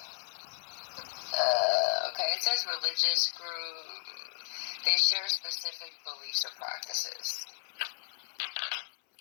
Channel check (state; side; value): silent; right; 55 dB below the other